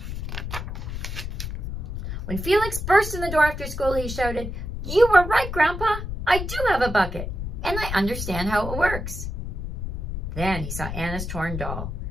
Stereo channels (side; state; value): left; noise; rumble, 5 dB below the sound